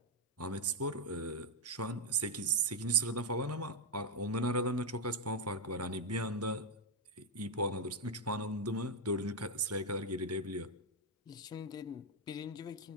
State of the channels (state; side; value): normal; both; correlation 0.04